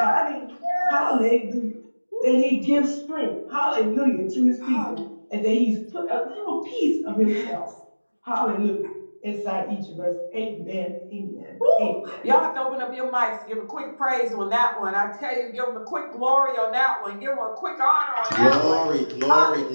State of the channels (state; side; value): inverted; both; correlation -1.00